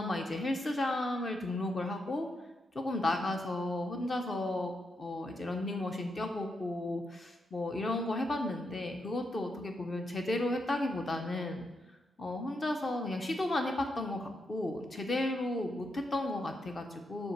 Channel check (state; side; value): normal; both; correlation 0.82